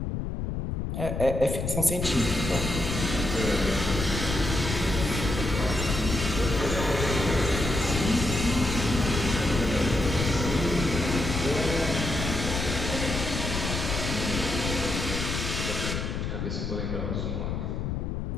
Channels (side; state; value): left; noise; rumble, 3 dB below the sound